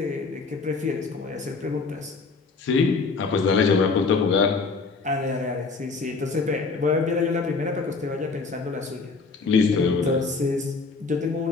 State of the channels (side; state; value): right; quieter; 4.3 dB